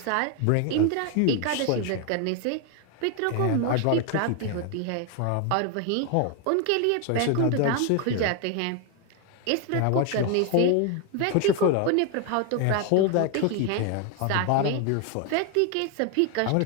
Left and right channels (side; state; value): both; different; correlation 0.01